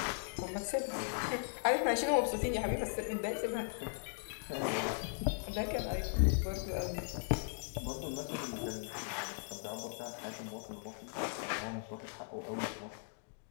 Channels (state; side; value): silent; right; digital silence